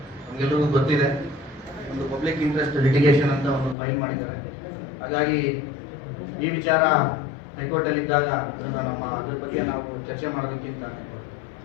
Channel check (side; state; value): right; drops out; at 3.8 s